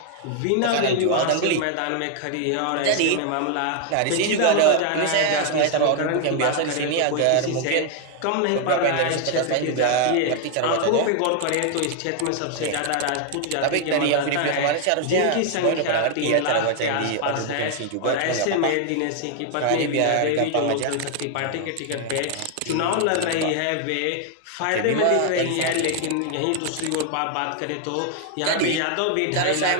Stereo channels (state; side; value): different; both; correlation 0.00